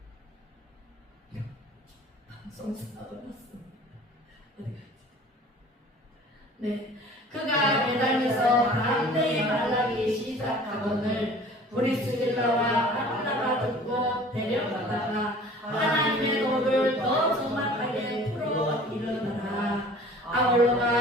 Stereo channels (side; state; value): both; normal; correlation 0.47